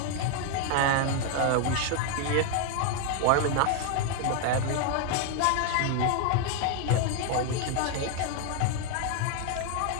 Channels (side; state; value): both; different; correlation 0.00